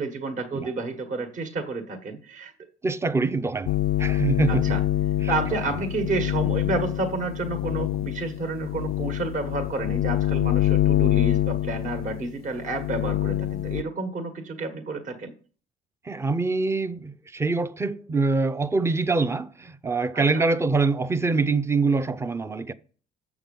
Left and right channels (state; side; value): normal; both; correlation 0.39